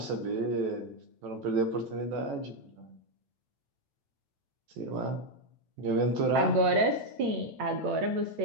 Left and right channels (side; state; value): left; late; 8.7 ms